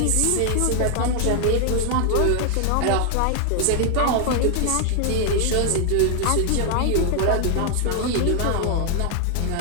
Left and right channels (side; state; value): both; different; correlation 0.00